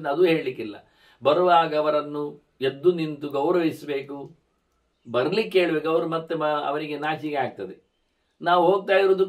ಅದು ಹೇಳಲಿಕ್ಕಿಲ್ಲ. ಬರುವಾಗ ಅವರನ್ನು ಎದ್ದು ನಿಂತು ಗೌರವಿಸಬೇಕು, ಬರ್ಲಿಕ್ಕೆ ಹೇಳ್ಬೇಕು. ಅವರು ಮತ್ತೆ ಅವರಿಗೆ ನಾಚಿಕೆ ಆಗ್ತದೆ. ನಾವು ಹೋಗ್ತಾ ಇರೋದು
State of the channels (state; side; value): identical; both; correlation 1.00